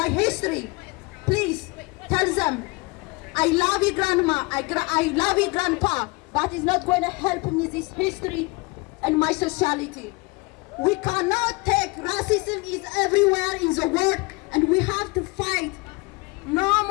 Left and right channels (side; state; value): right; quieter; 26.0 dB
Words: history, please tell them, I love you grandma, I love you grandpa, but it's not going to help me this history and my society. We cannot take racism is everywhere in the world and we have to fight. No